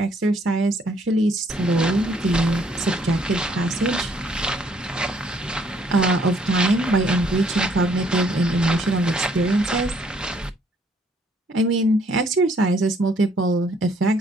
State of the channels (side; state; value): both; normal; correlation 0.66